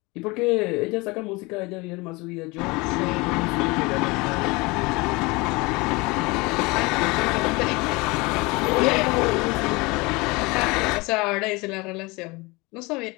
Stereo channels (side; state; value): right; quieter; 24.7 dB